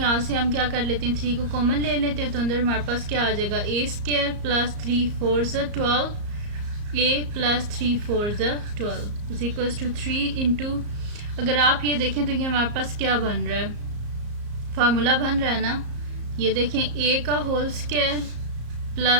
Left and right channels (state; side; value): late; left; 34 ms